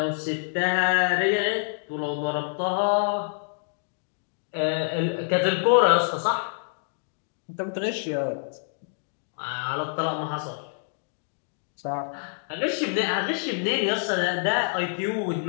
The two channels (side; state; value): right; silent; digital silence